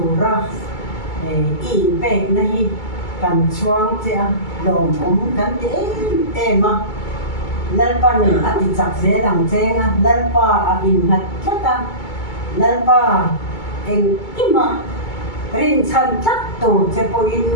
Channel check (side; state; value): right; late; 2.3 ms